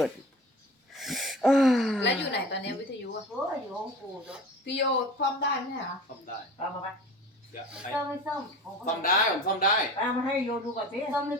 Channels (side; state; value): both; normal; correlation 0.38